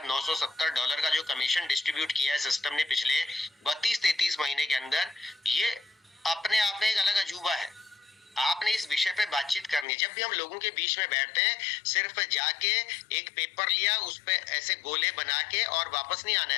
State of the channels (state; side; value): drops out; right; at 9.9 s